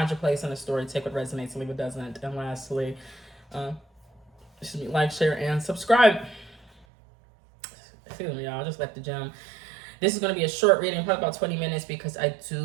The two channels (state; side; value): drops out; left; at 6.9 s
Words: your place in the story, take what resonates, leave what doesn't. And lastly, like, share, and subscribe. Excuse me, y'all, I just left the gym. This is going to be a short reading, probably about 20 minutes, because I